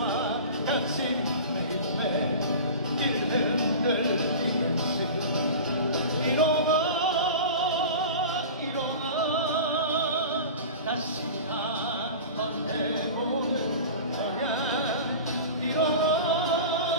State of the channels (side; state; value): both; inverted; correlation -0.34